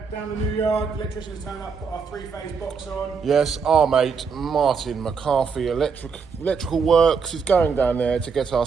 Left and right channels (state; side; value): quieter; left; 5.6 dB